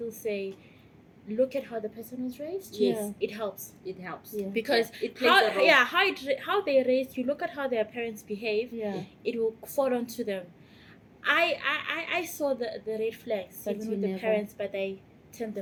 say, look at how the person was raised. Yes. It helps. It helps. Yeah. Because It plays a role. how they raised, you look at how their parents behave, Yeah. it will fall onto them. I saw the red flags But even you with the never. parents, but they turned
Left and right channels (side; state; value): both; identical; correlation 1.00